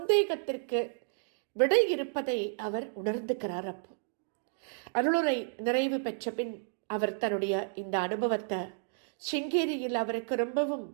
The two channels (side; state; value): left; silent; digital silence